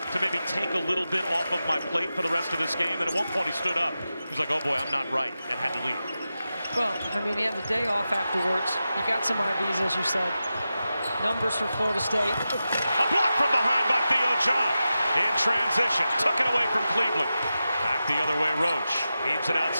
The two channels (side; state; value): both; inverted; correlation -0.92